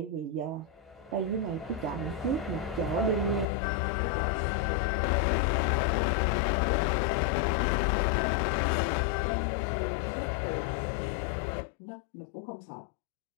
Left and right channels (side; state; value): right; drops out; at 3.5 s